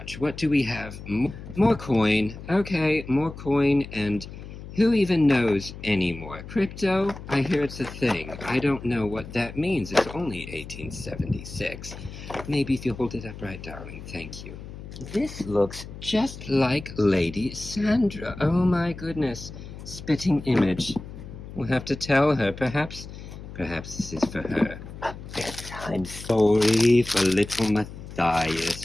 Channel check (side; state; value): left; noise; hum, 13 dB below the sound